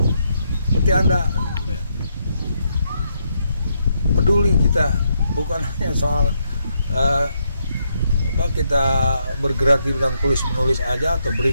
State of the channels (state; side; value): inverted; both; correlation -0.78